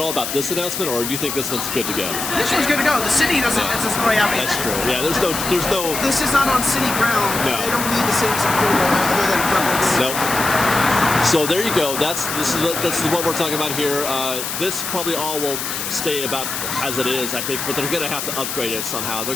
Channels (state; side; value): noise; left; hiss, 4 dB below the sound